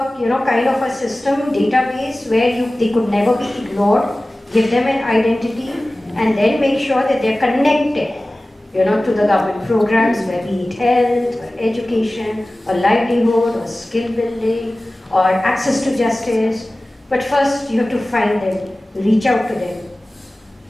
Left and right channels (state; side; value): normal; both; correlation 0.97